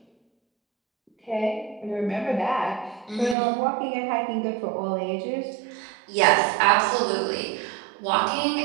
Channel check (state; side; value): drops out; left; at 3.4 s